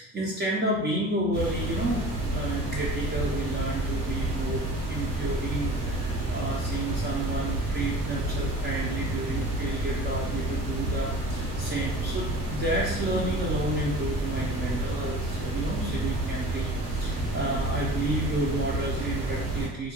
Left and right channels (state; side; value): normal; both; correlation 0.41